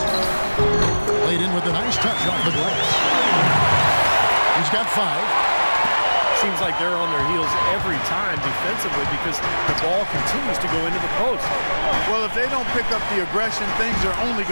Laid in with a nice touch off the glass. He's got 5. Seems like they're on their heels every time defensively because the ball continues to go into the post. Well, if they don't pick up the aggression, things are only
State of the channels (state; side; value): inverted; both; correlation -1.00